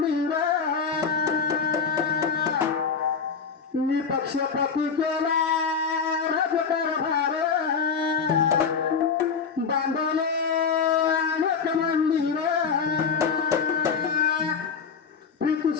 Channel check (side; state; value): right; quieter; 5.9 dB